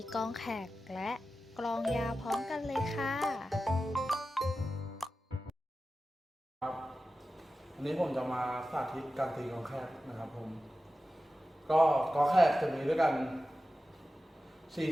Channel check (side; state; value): both; normal; correlation 0.94